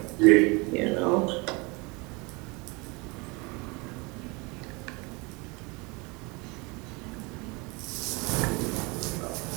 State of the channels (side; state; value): left; quieter; 27.5 dB